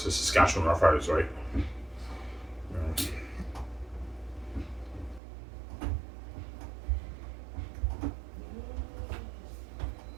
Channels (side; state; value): left; drops out; at 5.2 s